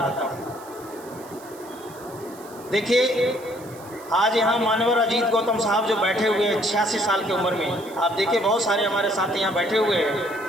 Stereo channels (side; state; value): right; noise; hiss, 22 dB below the sound